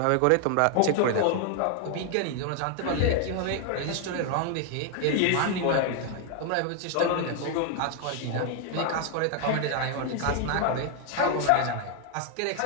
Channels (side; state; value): both; different; correlation 0.00